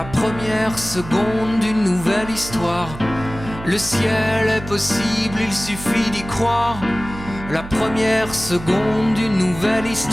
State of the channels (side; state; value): right; noise; hum, 13 dB below the sound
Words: première seconde d'une nouvelle histoire, le ciel est possible, il suffit d'y croire. La première seconde d'une nouvelle